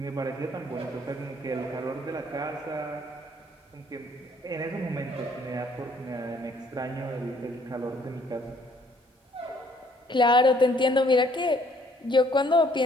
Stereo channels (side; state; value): both; normal; correlation 0.63